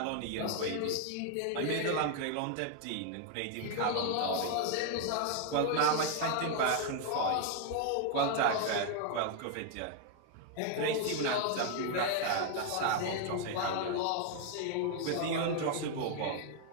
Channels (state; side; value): different; both; correlation 0.00